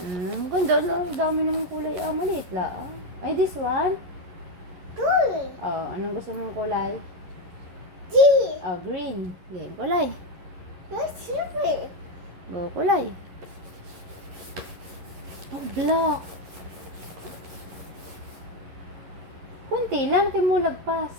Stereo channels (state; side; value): late; left; 11 ms